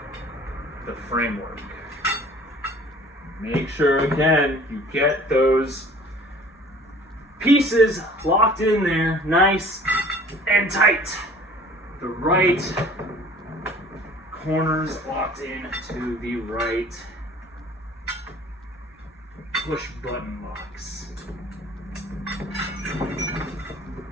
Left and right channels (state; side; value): normal; both; correlation 0.49